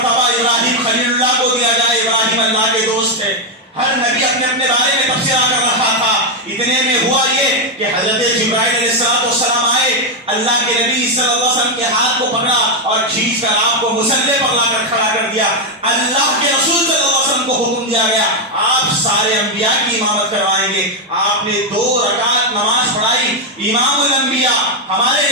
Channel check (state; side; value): normal; both; correlation 0.04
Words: ابراہیم خلیل اللہ کو دیا جائے. ابراہیم اللہ کے دوست ہے. ہر نبی اپنے اپنے بارے میں تبصرہ کر رہا تھا. اتنے میں ہوا یہ کہ حضرت جبرائیل علیہ السلام آئے. اللہ کے نبی صلی اللہ علیہ وسلم کے ہاتھ کو پکڑا اور کھینچ کر آپ کو مصلی پر لا کر کھڑا کر دیا. اللہ کے رسول صلی اللہ علیہ وسلم کو حکم دیا گیا آپ سارے انبیاء کی امامت کروائیں گے. آپ نے 2 رکعت نماز پڑھائی. امام الانبیاء ہمارے